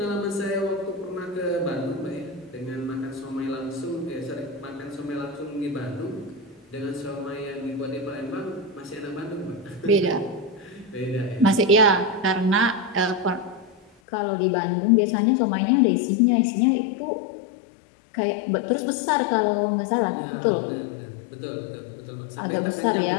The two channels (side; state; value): right; drops out; at 13.9 s